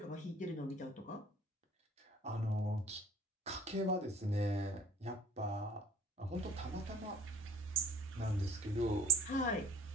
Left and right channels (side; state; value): both; normal; correlation 0.49